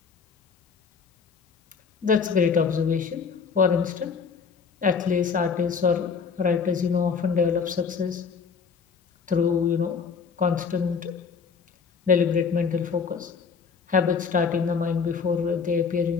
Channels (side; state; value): right; quieter; 5.7 dB